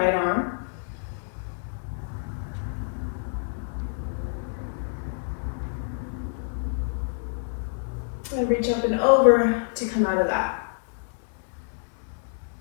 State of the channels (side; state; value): right; silent; digital silence